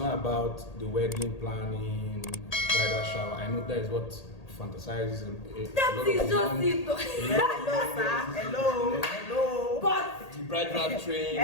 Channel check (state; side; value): late; right; 1.8 ms